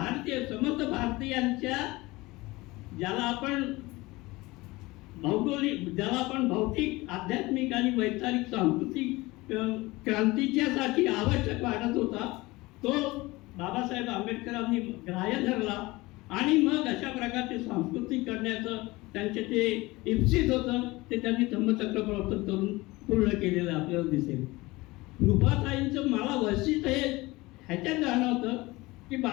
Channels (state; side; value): quieter; right; 21.3 dB